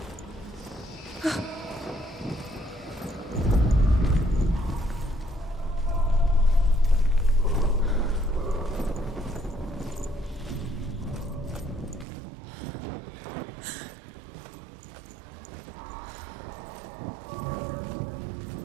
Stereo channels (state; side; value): drops out; left; at 12.1 s